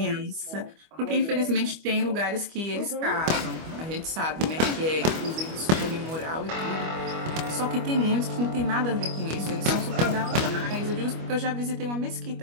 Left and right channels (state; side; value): late; left; 25 ms